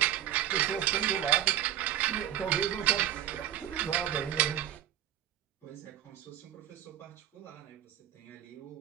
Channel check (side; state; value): left; quieter; 11.7 dB